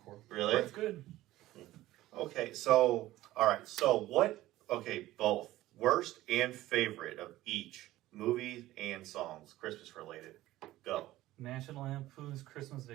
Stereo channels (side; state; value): left; quieter; 16.1 dB